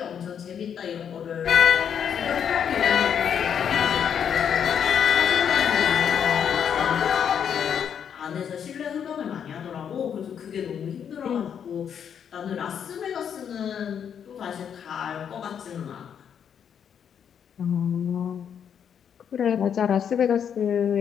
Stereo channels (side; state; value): right; quieter; 8.1 dB